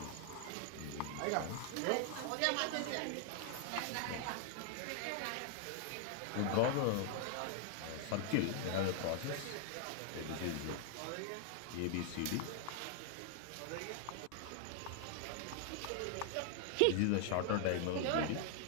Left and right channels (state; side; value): different; both; correlation 0.00